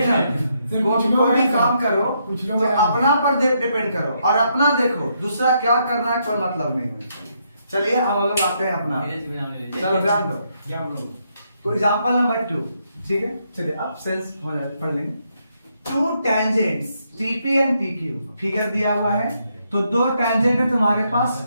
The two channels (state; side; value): inverted; both; correlation -0.76